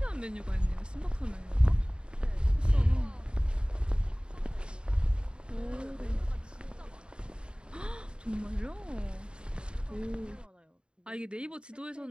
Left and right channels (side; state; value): left; late; 0.052 ms